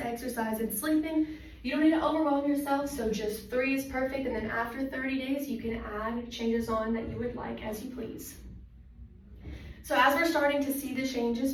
and sleeping. You don't need to overwhelm yourself, so just 3 is perfect, and then after 30 days, you can add changes on that you would like as you please. So as we're starting to see the changes,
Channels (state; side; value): identical; both; correlation 1.00